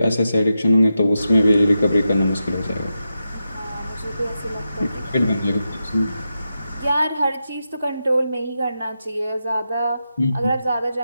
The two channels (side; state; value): both; inverted; correlation -0.88